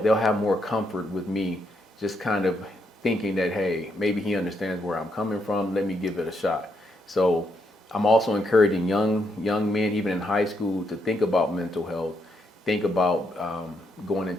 have more comfort with me, just kind of thinking that, hey, maybe he understands where I'm coming from. Let me give it a shot. So I'm also encouraging young men, even in high school, to think about mental health, think about going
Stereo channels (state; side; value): normal; both; correlation 0.78